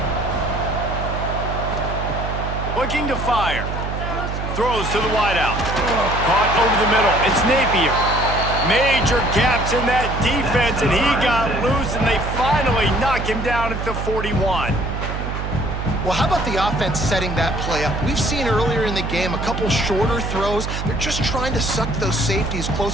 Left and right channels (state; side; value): noise; right; hum, 4 dB below the sound